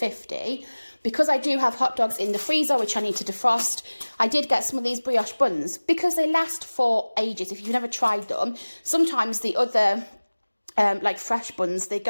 Because I do have hot dogs in the freezer, which I need to defrost, I did get some of these brioche buns. Because they last for ages. If you've never tried them, sometimes the other like fresh buns, they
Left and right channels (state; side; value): inverted; both; correlation -1.00